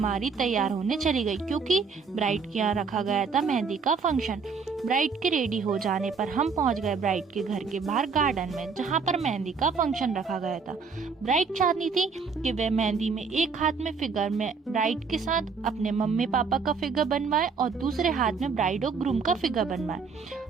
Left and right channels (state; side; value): quieter; left; 5.2 dB